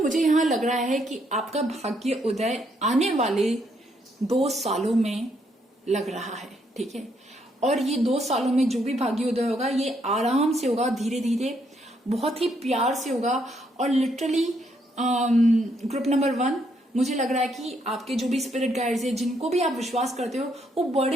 मुझे यहां लग रहा है कि आपका भाग्य उदय आने वाले 2 सालों में लग रहा है, ठीक है। और ये 2 सालों में जो भी भाग्य उदय होगा ये आराम से होगा, धीरे धीरे, बहुत ही प्यार से होगा। और लिटरली ग्रुप नंबर 1, मुझे लग रहा है कि आपके जो भी स्पिरिट गाइड्स है, जिनको भी आप विश्वास करते हो, वो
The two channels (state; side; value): normal; both; correlation 0.74